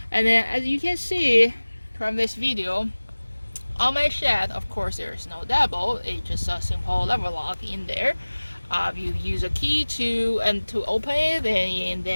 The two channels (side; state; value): both; inverted; correlation -1.00